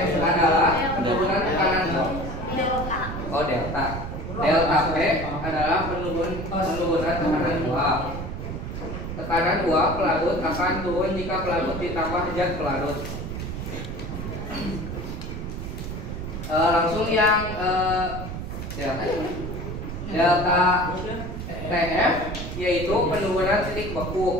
adalah penurunan tekanan delta. Delta P adalah penurunan tekanan uap. Tekanan uap pelarut akan turun jika pelarut ditambah zat pelarut. Langsung yang delta TF yaitu penurunan titik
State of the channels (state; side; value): noise; right; rumble, 6 dB below the sound